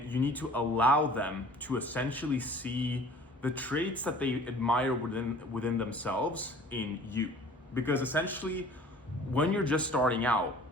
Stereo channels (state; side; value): normal; both; correlation 0.48